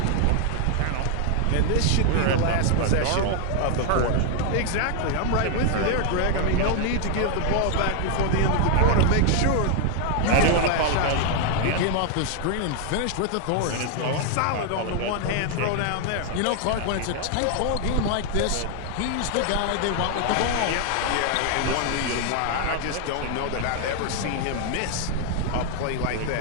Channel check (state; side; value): different; both; correlation 0.00